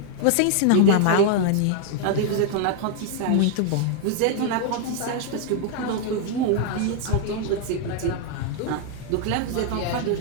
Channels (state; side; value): different; both; correlation 0.00